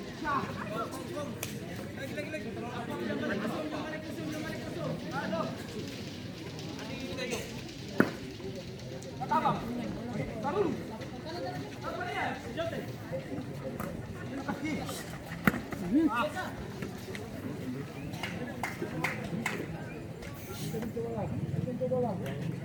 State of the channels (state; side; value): identical; both; correlation 1.00